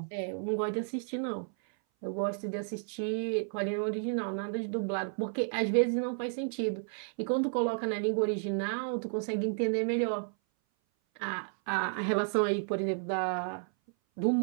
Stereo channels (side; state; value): left; silent; 56 dB below the other